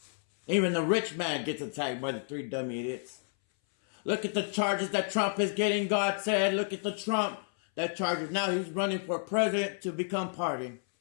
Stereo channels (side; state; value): right; silent; 57 dB below the other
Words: Even the rich man gets attacked by the three dummy idiots. Look at the charges that Trump is getting, God said. Look at the Trump that charges. Now he's running for president to become pardoned.